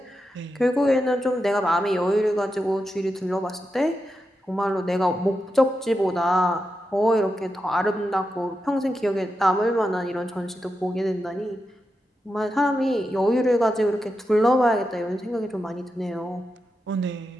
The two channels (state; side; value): normal; both; correlation 0.88